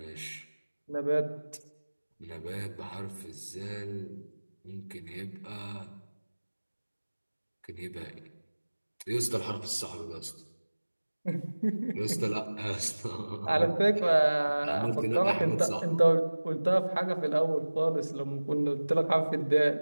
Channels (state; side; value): inverted; both; correlation -1.00